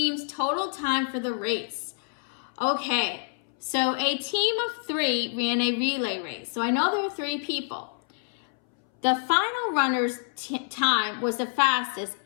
total time for the race? Okay, so a team of 3 ran a relay race. So I know there are 3 people. The final runner's time was the fastest,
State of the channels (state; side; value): silent; right; 60 dB below the other